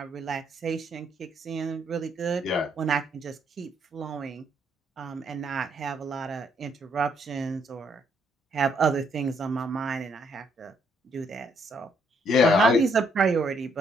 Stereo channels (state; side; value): normal; both; correlation 0.71